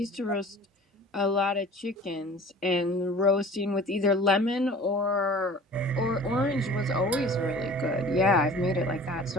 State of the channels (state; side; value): normal; both; correlation 0.45